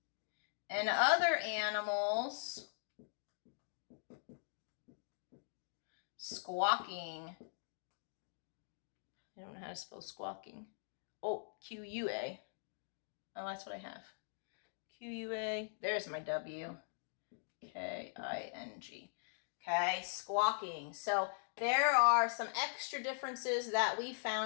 and other animals squawking. I don't know how to spell squawking. Oh, Q-U-A. Oh, that's what I have. Q-U-A. There's my W. K-I-N-G. Okay, squawking. So there are some extra differences that we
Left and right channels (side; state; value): right; silent; digital silence